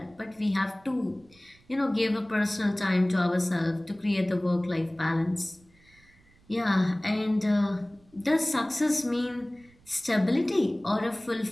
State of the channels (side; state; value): right; noise; rumble, 30 dB below the sound